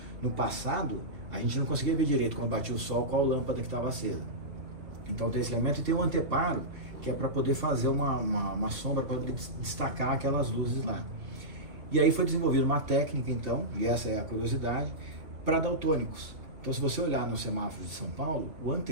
no passado, a gente não conseguia ver direito quando batia o sol qual lâmpada que estava acesa. Então tem esse elemento e tem o anteparo, que é para poder fazer uma sombra, para poder destacar aquelas luzes lá. E aí foi desenvolvida uma técnica, então, e essa é a curiosidade, para daltônicos. Então, se você olhar nos semáforos de São Paulo, o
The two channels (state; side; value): late; left; 2.5 ms